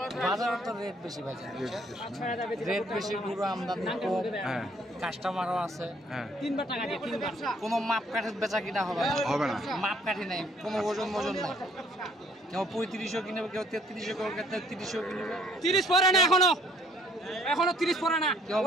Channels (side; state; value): both; normal; correlation 0.61